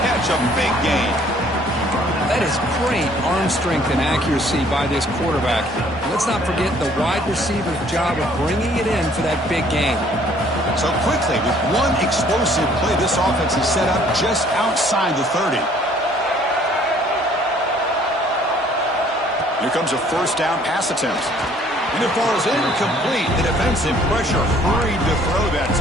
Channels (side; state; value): both; normal; correlation 0.59